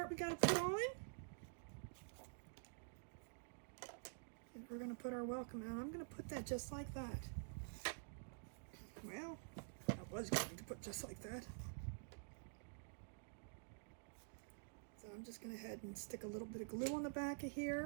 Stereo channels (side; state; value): left; silent; digital silence